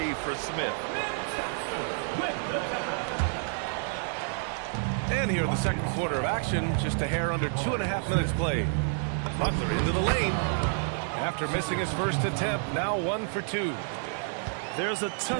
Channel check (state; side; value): silent; left; 58 dB below the other